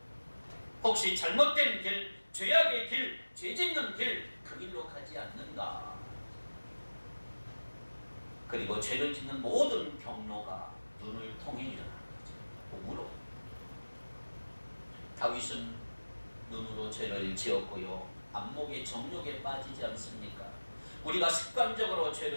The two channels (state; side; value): inverted; both; correlation -1.00